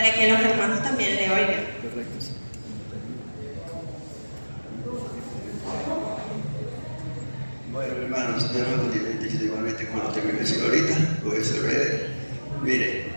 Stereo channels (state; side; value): inverted; both; correlation -1.00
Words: que los hermanos también le oigan. Bueno, hermanos, Dios nos bendiga igualmente como lo tengo que decir ahorita, voy a ser breve. Mire,